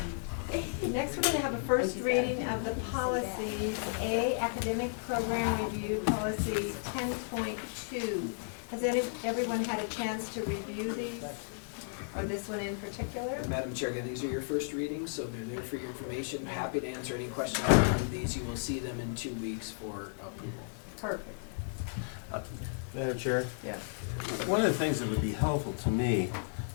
Next, we're going to have a first reading of the policies. A, Academic Program Review Policy 10.2. Has everyone had a chance to review these? Or this one in particular? Madam Chair, again, these are your first readings, so they're there for your information. Happy to answer any questions on these. You will see them in 2 weeks for approval. Perfect. Madam Chair? Yes. One of the things that would be helpful to me,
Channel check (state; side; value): silent; right; digital silence